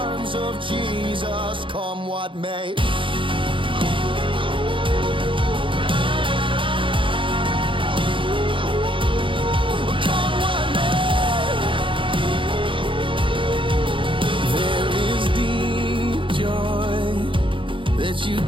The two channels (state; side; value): late; left; 0.25 ms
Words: of Jesus, come what may. Come what may. There is deep joy that you